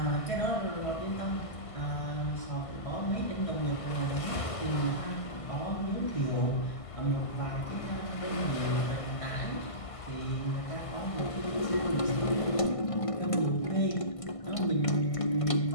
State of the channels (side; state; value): right; late; 1.5 ms